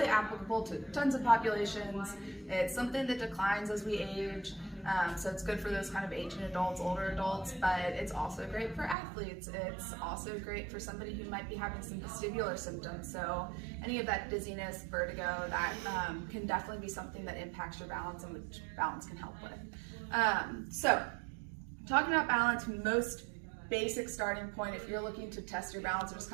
applicable to tons of populations. It's something that declines as we age. So it's good for those kind of aging adults, older adults, but it's also great for athletes. It's also great for somebody who might be having some vestibular symptoms. So any of that dizziness, vertigo, that can definitely be something that impacts your balance and which balance can help with. So talking about balance, most basic starting point, if you're looking to test your balance or just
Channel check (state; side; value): drops out; left; at 9.0 s